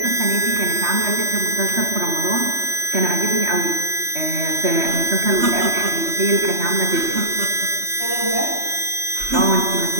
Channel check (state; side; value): late; left; 3.2 ms